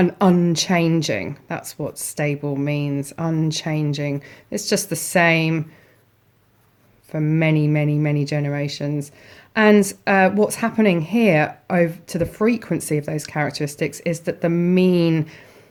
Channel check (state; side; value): identical; both; correlation 1.00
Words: unchanging. That's what stable means, unchanging. It's just the same for many, many, many generations. And what's happening here over to the frequency of those characteristics is that the mean